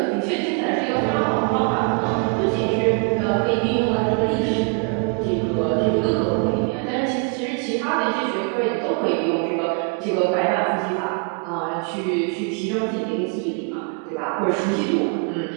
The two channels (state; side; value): quieter; left; 36.5 dB